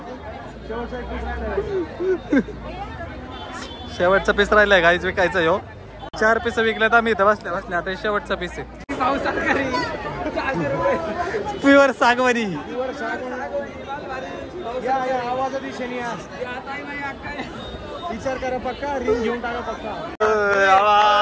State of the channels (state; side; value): identical; both; correlation 1.00